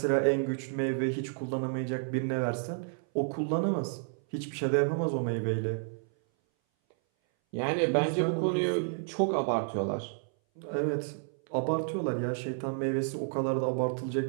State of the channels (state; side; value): silent; left; 57 dB below the other